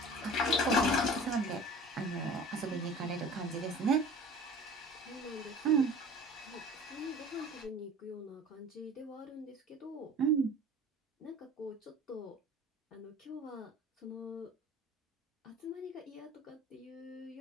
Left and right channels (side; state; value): both; normal; correlation 0.41